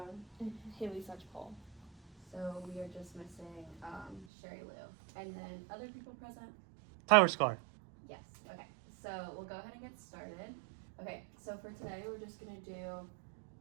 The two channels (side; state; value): left; drops out; at 4.2 s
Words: And Haley Such-Paul. So we are just missing Sherry Lou. And then other people present? Tyler Scar. Yes. Okay. So we'll go ahead and get started. Okay. So for today, we're just gonna do